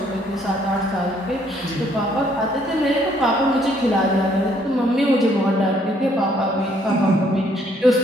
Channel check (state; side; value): normal; both; correlation 0.66